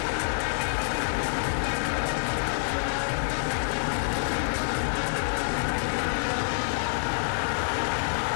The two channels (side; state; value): right; silent; 60 dB below the other